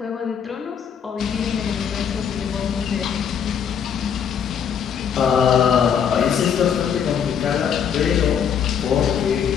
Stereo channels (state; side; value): quieter; right; 7.8 dB